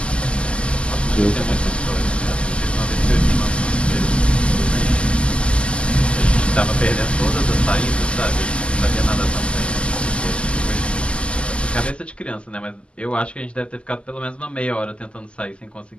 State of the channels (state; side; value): late; right; 0.054 ms